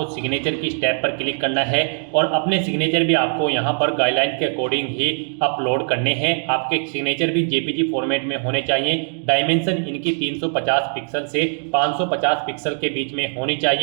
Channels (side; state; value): left; silent; 57 dB below the other